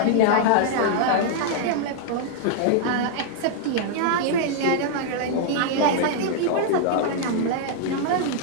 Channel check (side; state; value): both; different; correlation -0.01